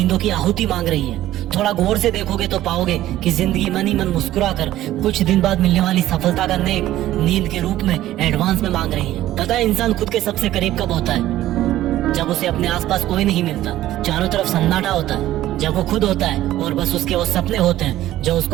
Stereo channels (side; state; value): left; quieter; 14.3 dB